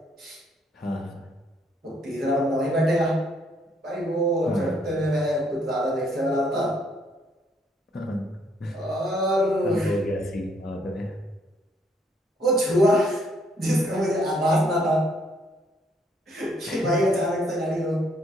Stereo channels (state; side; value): normal; both; correlation 0.68